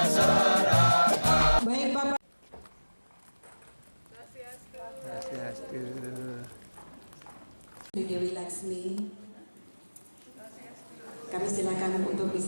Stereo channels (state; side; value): inverted; both; correlation -1.00